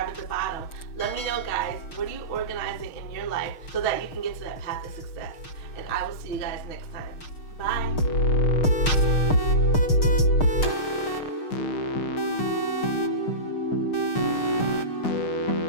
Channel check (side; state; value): right; late; 6.5 ms